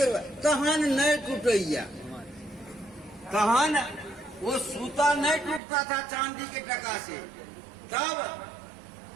रुपया, कहान नहीं टूटैया, कहान वो सूता नहीं टूटता था चांदी के टका से, तब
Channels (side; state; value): left; drops out; at 5.6 s